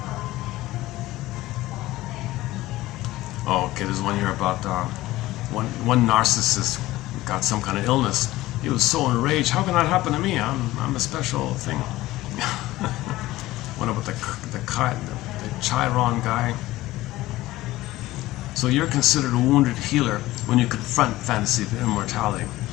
Oh, okay, there's one here about one narcissist got some kind of illness. He was so enraged. How can that happen to me? I'm a special thing. One about the Chiron guy. So you're considered a wounded healer when you confront fantasy of immortality.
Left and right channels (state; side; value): quieter; right; 17.2 dB